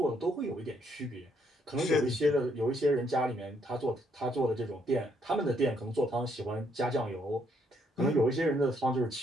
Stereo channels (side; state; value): both; normal; correlation 0.72